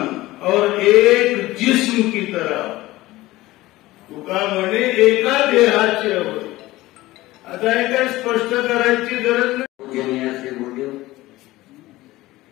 और एक जिस्म की तरह. तुका म्हणे एका देहाचे अवयव. आता हे काय स्पष्ट करायची गरज नाही. पूजनीय श्री गुरुदेव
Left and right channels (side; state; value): right; quieter; 17.9 dB